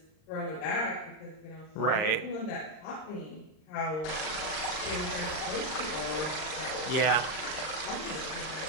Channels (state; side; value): late; right; 39 ms